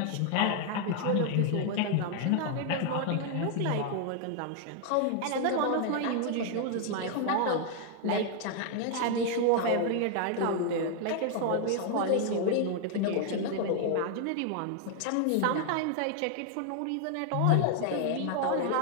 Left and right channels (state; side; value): different; both; correlation 0.00